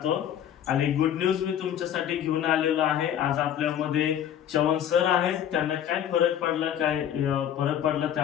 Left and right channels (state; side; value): quieter; right; 10.1 dB